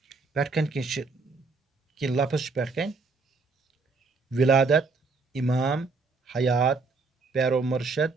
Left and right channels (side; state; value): left; quieter; 4.1 dB